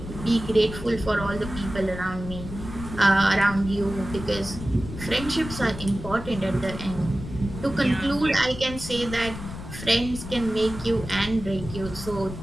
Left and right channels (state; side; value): noise; left; rumble, 10 dB below the sound